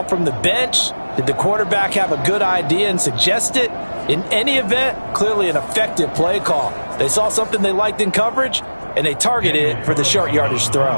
from the bench? Did the quarterback have a good idea and suggest it? In any event, clearly an effective play call. They saw something they liked in coverage, and they targeted it for the short yardage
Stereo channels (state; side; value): inverted; both; correlation -1.00